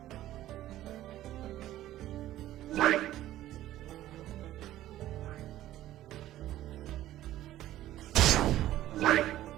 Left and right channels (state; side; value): quieter; left; 14.0 dB